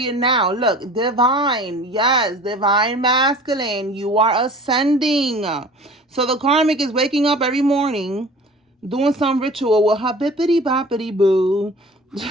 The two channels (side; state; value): both; normal; correlation 0.43